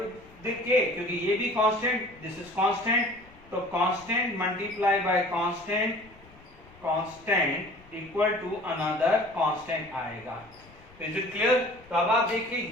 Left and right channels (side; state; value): left; noise; rumble, 24 dB below the sound